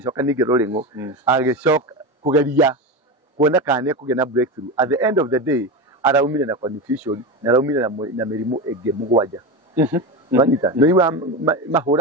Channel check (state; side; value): normal; both; correlation 0.20